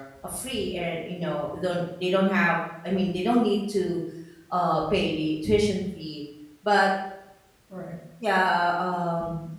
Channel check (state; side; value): identical; both; correlation 1.00